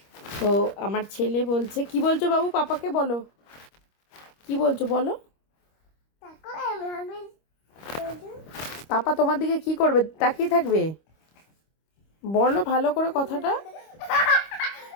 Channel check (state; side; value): late; right; 25 ms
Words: তো আমার ছেলে বলছে, কি বলছো বাবু, পাপাকে বলো, কি বলছো বলো। পাপা তোমার দিকে কি করবে, তাকিয়ে থাকবে? বলো ভালো করে কথাটা।